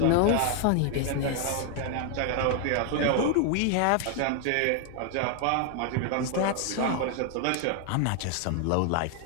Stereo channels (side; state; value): both; different; correlation 0.00